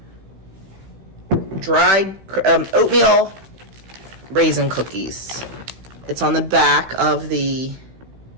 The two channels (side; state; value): left; late; 16 ms